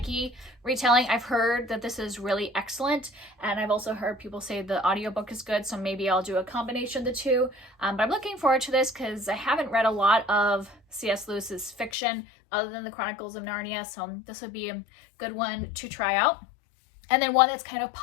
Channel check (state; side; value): drops out; right; at 11.9 s